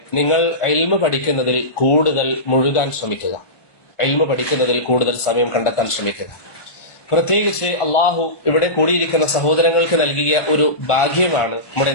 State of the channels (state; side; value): late; right; 1.2 ms